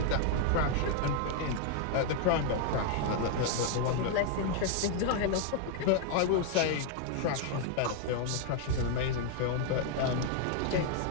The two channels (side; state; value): both; different; correlation 0.00